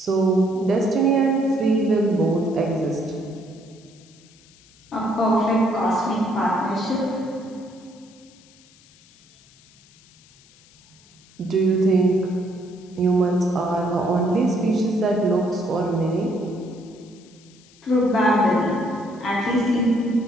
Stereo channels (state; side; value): noise; left; hiss, 27 dB below the sound